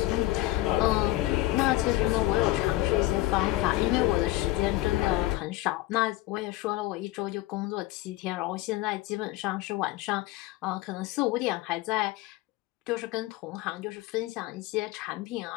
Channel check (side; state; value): right; quieter; 17.4 dB